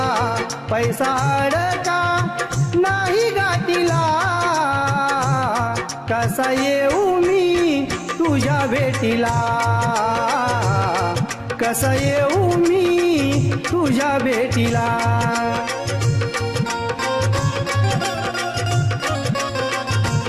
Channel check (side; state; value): both; identical; correlation 1.00